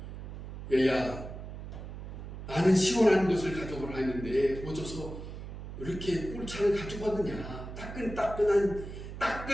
얘야, 나는 시원한 것을 가져오라 했는데 어째서 이렇게 꿀차를 가지고 왔느냐, 따끈따끈한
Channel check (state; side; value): noise; right; hum, 10 dB below the sound